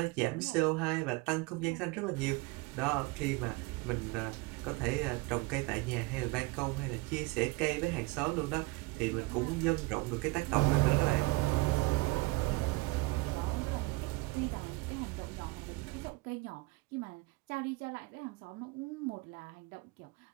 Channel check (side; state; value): left; quieter; 23.7 dB